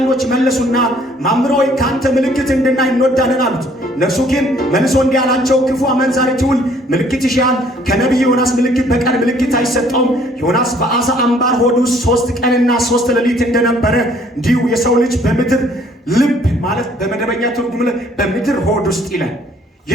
መለሱና መምህር ሆይ ከአንተ ምልክት እንድናይ እንወዳለን አሉት። እነርሱ ግን መልሶ እንዲህ አላቸው፣ ክፉ አመንዛሪ ትውልድ ምልክት ይሻል፣ ከነቢይ ዮናስ ምልክት በቀር ምልክት አይሰጠውም። ዮናስ በአሳ አምባር ሆድ ውስጥ 3 ቀንና 3 ሌሊት እንደነበረ እንዲሁ የሰው ልጅ በምድር ልብ ማለት በመደበኛ ትርጉም በምድር ሆድ ውስጥ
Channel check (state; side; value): normal; both; correlation 0.60